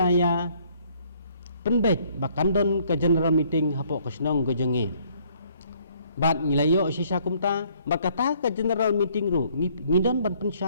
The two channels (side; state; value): both; inverted; correlation -0.63